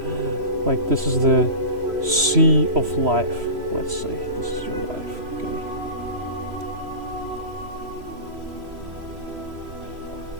Like this is the sea of life, let's say. This is your life, okay?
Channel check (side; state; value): left; late; 3.0 ms